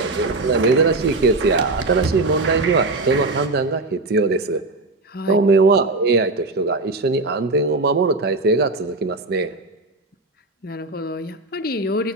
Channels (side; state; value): left; quieter; 3.2 dB